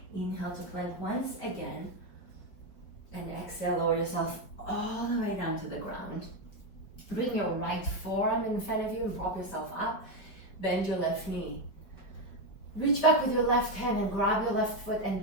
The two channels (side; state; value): right; late; 5.3 ms